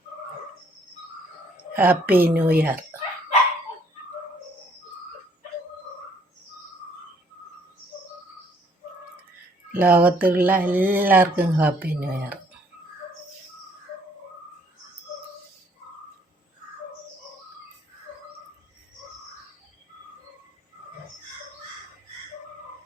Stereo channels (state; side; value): normal; both; correlation 0.63